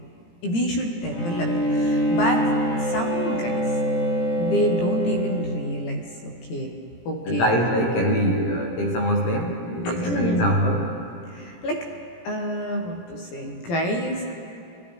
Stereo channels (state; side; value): late; right; 17 ms